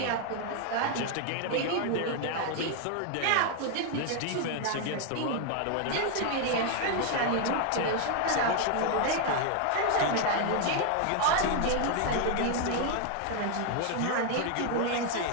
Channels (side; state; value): both; different; correlation 0.01